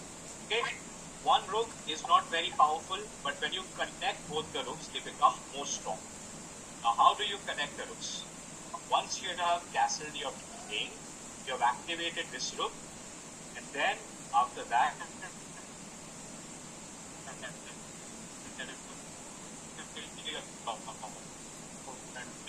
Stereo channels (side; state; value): both; identical; correlation 1.00